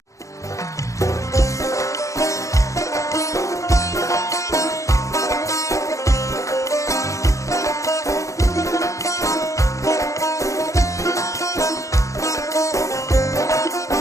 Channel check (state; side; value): late; right; 0.15 ms